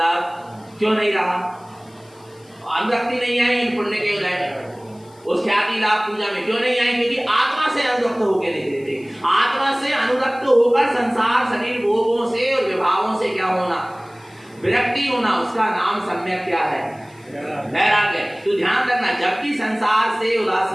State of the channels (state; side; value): noise; left; hiss, 30 dB below the sound